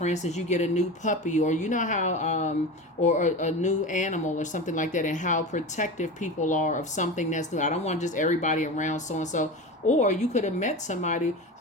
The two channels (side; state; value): both; normal; correlation 0.27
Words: instance, you get a new puppy, or how, or a new animal or something like that, and how protective people are of something that's new. I don't want just everybody around so-and-so. Or you could have met somebody